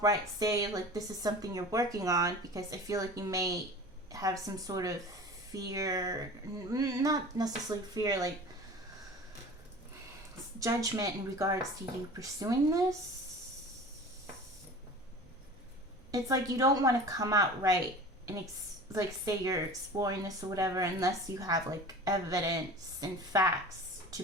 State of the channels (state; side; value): normal; both; correlation 0.38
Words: say, like, this is something you're working on, because I feel like you may have some sort of fear, not necessarily fear, like judgment in regards to you pursuing this. It's like you don't want to come out right and like say you're exploring this or whatever unless you have like evidence and facts to